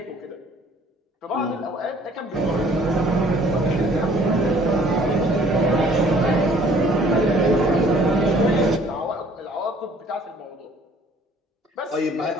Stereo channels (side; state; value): both; normal; correlation 0.57